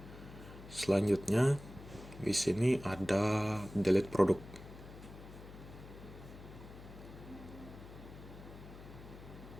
Selanjutnya di sini ada delete produk.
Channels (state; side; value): noise; left; hum, 15 dB below the sound